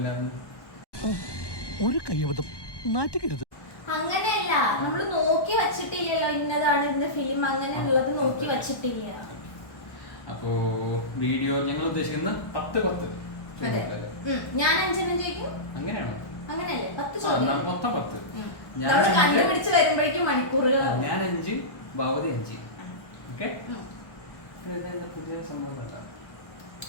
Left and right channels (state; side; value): late; right; 1.1 ms